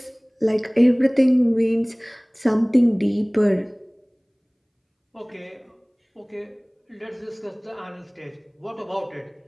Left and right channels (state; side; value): identical; both; correlation 1.00